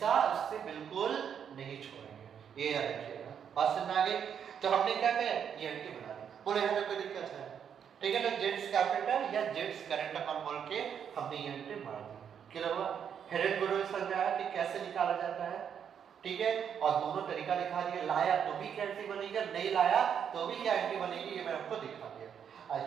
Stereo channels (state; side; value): quieter; left; 8.0 dB